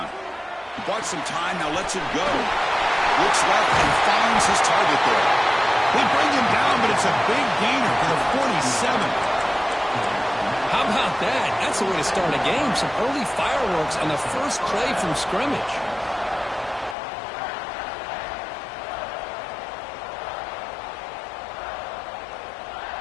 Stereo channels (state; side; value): drops out; right; at 16.9 s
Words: He bought some time, now lets it go. Looks left and finds his target there. They bring him down, but it's a big gainer for the 47. How about that? That's the way to start a game. Some early fireworks on the first play from scrimmage.